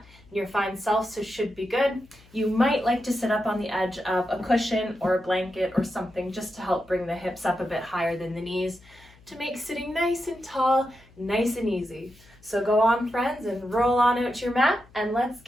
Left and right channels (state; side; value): noise; left; hum, 26 dB below the sound